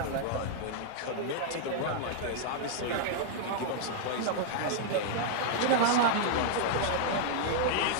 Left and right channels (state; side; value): different; both; correlation -0.01